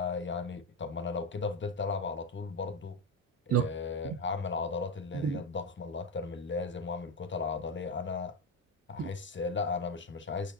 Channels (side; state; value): both; normal; correlation 0.11